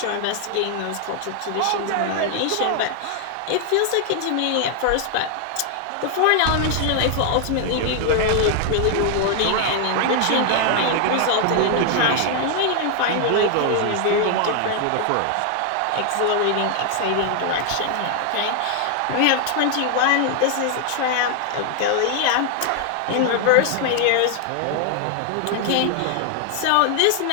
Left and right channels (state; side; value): different; both; correlation 0.00